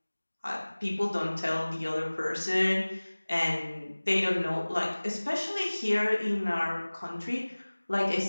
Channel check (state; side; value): inverted; both; correlation -1.00